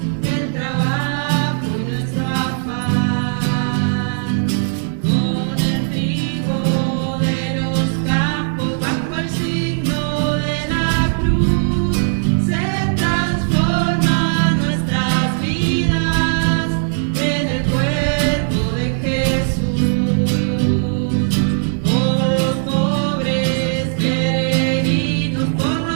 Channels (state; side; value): silent; left; digital silence